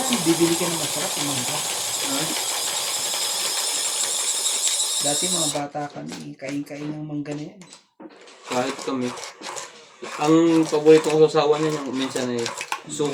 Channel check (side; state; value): both; identical; correlation 1.00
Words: bibili ka ng masarap yung mangga. Dati mga bata kami, kain-kain ng mangga na yan. Kahit kami. Ang paborito kong sasawa niya yung minsan ay